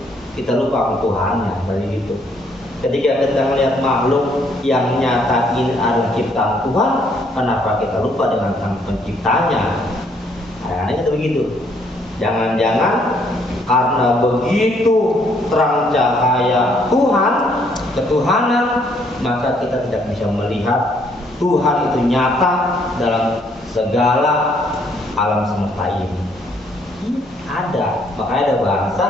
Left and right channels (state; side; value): normal; both; correlation 0.68